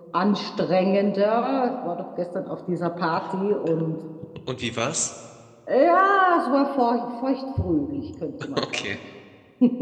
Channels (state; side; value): identical; both; correlation 1.00